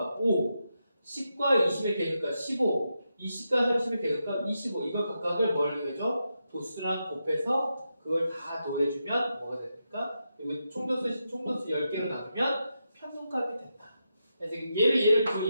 5 10과 20의 계급값 15 20과 30의 계급값 25 이걸 각각을 뭘 해줘? 도수랑 곱해서 그걸 다 더해주면 뭐가 됩니까? 그리고 총도수 10개로 나누면 평균값이 된다. 그래서 얘를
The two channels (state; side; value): inverted; both; correlation -0.86